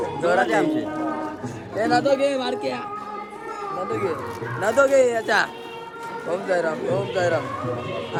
जोरात आमचे हे नादो घे मारके नादो घे याच्या. ओम साईराम. ओम साईराम.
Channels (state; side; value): identical; both; correlation 1.00